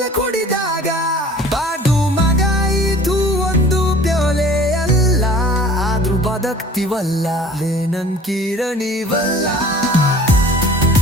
ಕುಡಿದಾಗ. ಬಾಡು ಮಗ ಇದು ಒಂದು ಪ್ಯೋಲೆ ಅಲ್ಲ, ಆದ್ರೂ ಬದುಕ್ತಿವಲ್ಲ ನನ್ ಕಿರಣಿವಲ್ಲ.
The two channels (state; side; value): normal; both; correlation 0.47